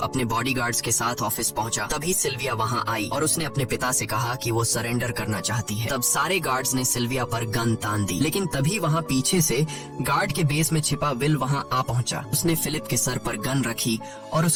अपने बॉडीगार्ड्स के साथ ऑफिस पहुंचा, तभी सिल्विया वहां आई और उसने अपने पिता से कहा कि वो सरेंडर करना चाहती है। तब सारे गार्ड्स ने सिल्विया पर गन तान दी, लेकिन तभी वहां पीछे से गार्ड के बेस में छिपा विल वहां आ पहुंचा। उसने फिलिप के सर पर गन रखी और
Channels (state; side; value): identical; both; correlation 1.00